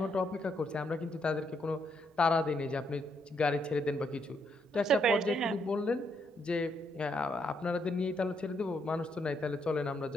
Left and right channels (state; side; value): normal; both; correlation 0.75